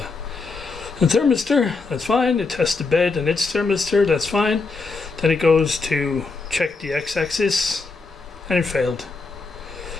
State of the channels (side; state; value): right; quieter; 4.1 dB